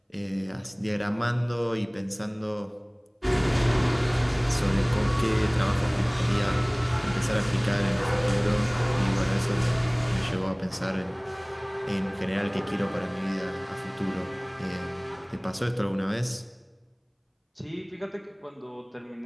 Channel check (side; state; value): both; identical; correlation 1.00